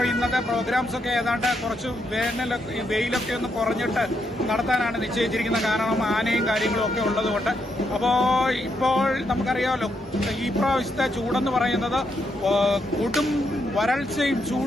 ഇന്നത്തെ പ്രോഗ്രാംസ് ഒക്കെ ഏതാണ്ട് കുറച്ച് വെയിലൊക്കെ ഒന്ന് കുറഞ്ഞിട്ട് നടത്താനാണ് നിശ്ചയിച്ചിരിക്കുന്നത്. കാരണം ആനയും കാര്യങ്ങളും ഒക്കെ ഉള്ളതുകൊണ്ട്. അപ്പോൾ ഇപ്പോൾ നമുക്കറിയാമല്ലോ, ഈ പ്രാവശ്യത്തെ ചൂടെന്ന് പറയുന്നത് കൊടും വരൾച്ചയും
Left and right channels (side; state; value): both; normal; correlation 0.79